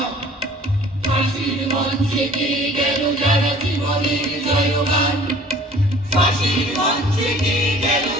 ফাঁসির মঞ্চে গেয়ে গেল যারা জীবনের জয়গান। ফাঁসির মঞ্চে গেয়ে গেল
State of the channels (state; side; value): normal; both; correlation 0.50